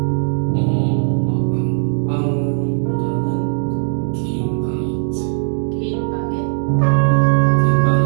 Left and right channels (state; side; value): silent; left; digital silence